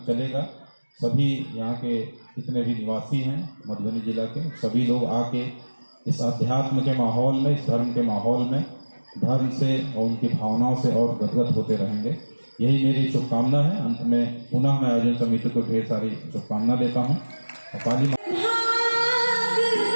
चलेगा, सभी यहाँ के जितने भी निवासी हैं मधुबनी जिला के, सभी लोग आके इस अध्यात्म के माहौल में, इस धर्म के माहौल में धर्म से और उनकी भावनाओं से और गदगद होते रहेंगे। यही मेरी शुभकामना है। अंत में पुनः मैं आयोजन समिति को ढेर सारी शुभकामना देता हूँ। काली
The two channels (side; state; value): both; inverted; correlation -1.00